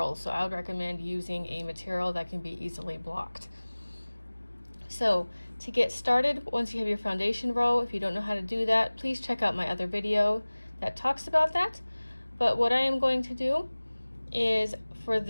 so I would recommend using a material that can be easily blocked. So to get started, once you have your foundation row, if you don't know how to do that, please check out my other video that talks about that. But what I am going to do is, for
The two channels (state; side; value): inverted; both; correlation -1.00